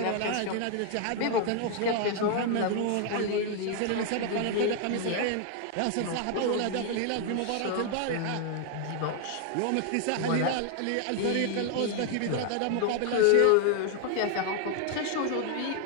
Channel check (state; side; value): different; both; correlation 0.00